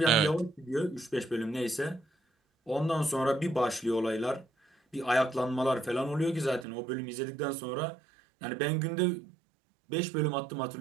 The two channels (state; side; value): drops out; left; at 6.7 s